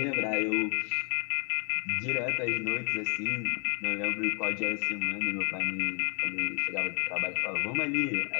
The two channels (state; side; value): quieter; right; 35.7 dB